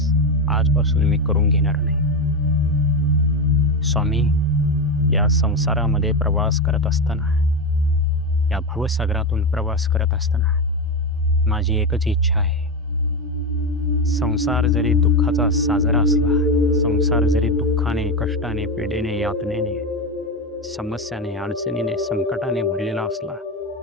आजपासून मी करून घेणार नाही. स्वामी, या संसारामध्ये प्रवास करत असताना, या भवसागरातून प्रवास करत असताना माझी एकच इच्छा आहे. संसार जरी दुःखाचा साजरा असला, संसार जरी दुःखाने, कष्टाने, पीडेने, यातनेने, समस्याने, अडचणीने, संकटाने भरलेला असला,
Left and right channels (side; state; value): both; normal; correlation 0.14